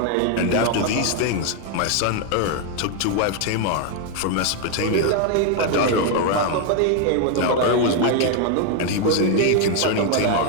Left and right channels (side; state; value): both; different; correlation 0.00